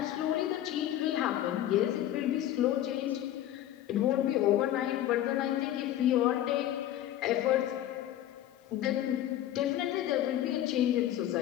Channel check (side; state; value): right; quieter; 12.5 dB